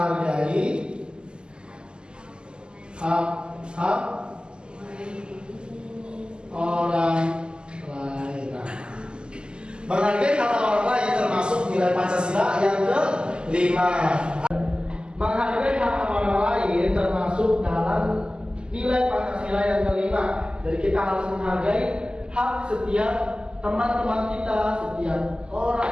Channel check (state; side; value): late; left; 0.048 ms